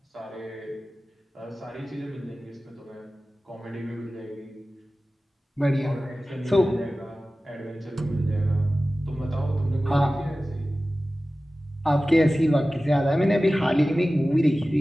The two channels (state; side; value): normal; both; correlation 0.96